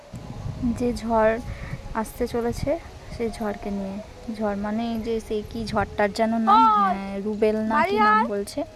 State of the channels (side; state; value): both; identical; correlation 1.00